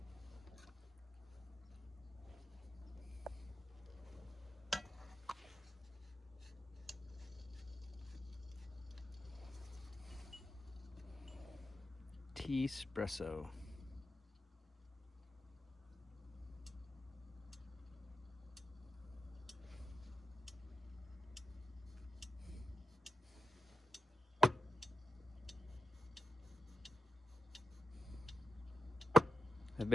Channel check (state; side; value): normal; both; correlation 0.89